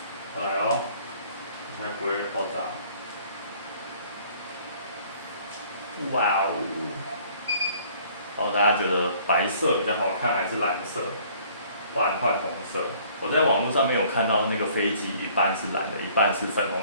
来哦，应该不会爆炸。哇哦！大家觉得白色比较好看还是蓝色？不然换红色。我在网络上面有看到那个飞机一半是蓝的，一半是粉红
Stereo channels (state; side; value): inverted; both; correlation -0.57